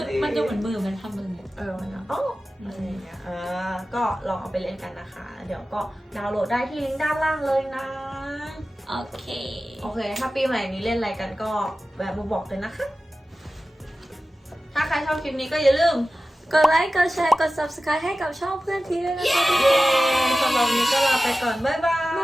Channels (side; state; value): both; normal; correlation 0.95